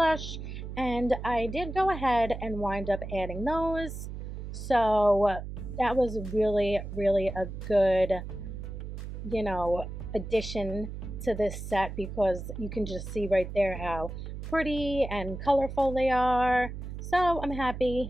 And I did go ahead and wind up adding those. So that was really, really a good, you know, addition to this set because you can just see right there how pretty and colorful they are. So I'm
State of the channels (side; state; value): right; noise; hum, 8 dB below the sound